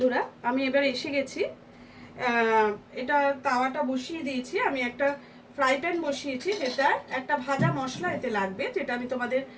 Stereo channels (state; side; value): identical; both; correlation 1.00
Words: আমি এবার এসে গেছি। এটা তাওয়াটা বসিয়ে দিয়েছি। আমি একটা ফ্রাই প্যান বসিয়েছি, যেটা একটা ভাজা মশলা এতে লাগবে, যেটা আমি তোমাদের